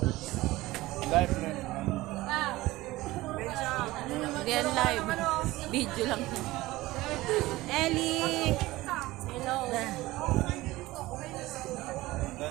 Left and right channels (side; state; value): left; quieter; 18.6 dB